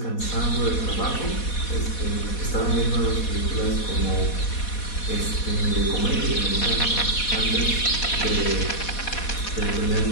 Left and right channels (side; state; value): right; late; 4.1 ms